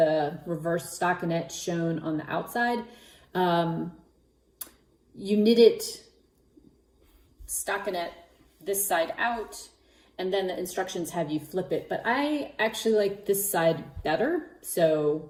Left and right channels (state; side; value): identical; both; correlation 1.00